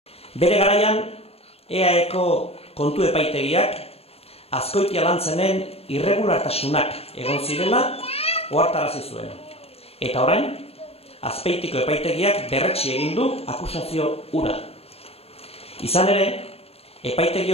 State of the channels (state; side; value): late; right; 0.29 ms